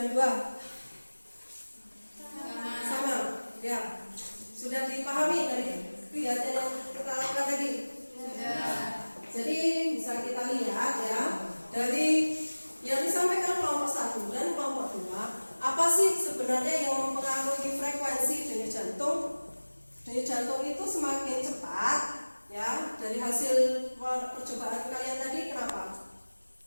2? Sama. Ya. Sudah dipahami dari kegiatan yang kita lakukan tadi? Sudah. Jadi bisa kita lihat ya, dari yang disampaikan kelompok 1 dan kelompok 2, apa sih sebenarnya yang mempengaruhi frekuensi denyut jantung? Denyut jantung itu semakin cepat ya dari hasil percobaan kalian tadi.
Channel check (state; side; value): inverted; both; correlation -1.00